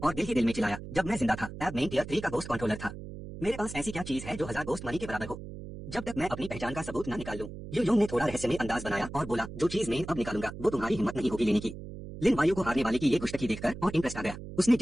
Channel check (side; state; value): right; noise; hum, 11 dB below the sound